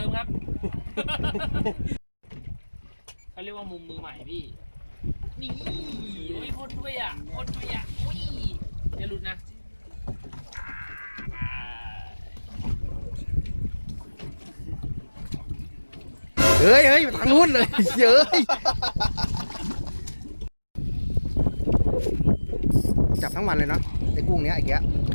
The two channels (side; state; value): both; inverted; correlation -1.00